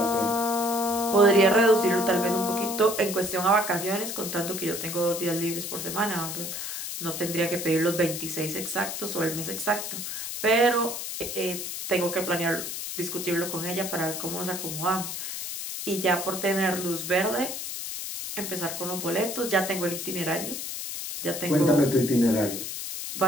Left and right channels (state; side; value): noise; left; hiss, 6 dB below the sound